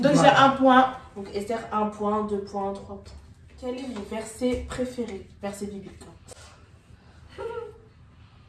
Donc j'ai un point. Donc Esther, 1 point, 2 points, 3 points. Quel est mon verset préféré? Verset biblique.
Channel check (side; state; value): both; identical; correlation 1.00